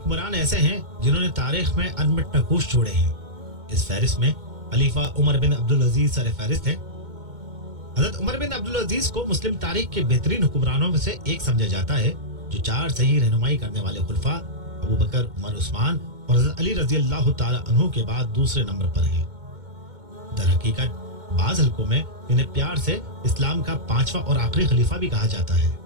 ایسے ہیں جنہوں نے تاریخ میں انمٹ نقوش چھوڑے ہیں۔ اس فہرست میں خلیفہ عمر بن عبدالعزیز سر فہرست ہے۔ حضرت عمر بن عبدالعزیز کو مسلم تاریخ کے بہترین حکمرانوں میں سے ایک سمجھا جاتا ہے، جو 4 صحیح رہنمائی کرنے والے خلفاء ابو بکر، عمر، عثمان اور حضرت علی رضی اللہ تعالی عنہ کے بعد دوسرے نمبر پر ہیں۔ در حقیقت بعض حلقوں میں انہیں پیار سے اسلام کا 5واں اور آخری خلیفہ بھی کہا جاتا ہے۔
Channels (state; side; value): late; left; 2.2 ms